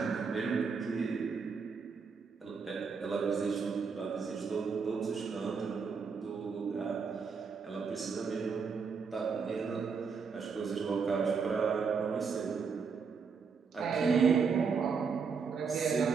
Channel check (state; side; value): quieter; left; 5.6 dB